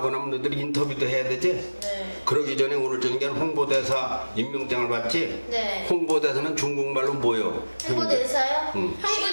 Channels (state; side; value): inverted; both; correlation -1.00